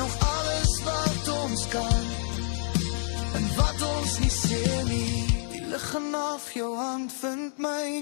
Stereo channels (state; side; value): silent; right; digital silence